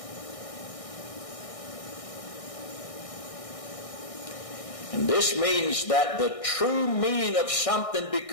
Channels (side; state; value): right; late; 1.6 ms